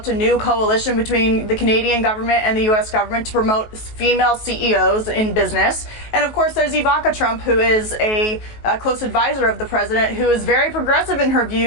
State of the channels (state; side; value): late; right; 19 ms